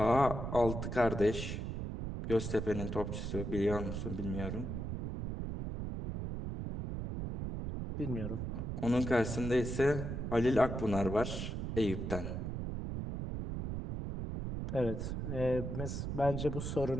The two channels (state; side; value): noise; right; rumble, 4 dB below the sound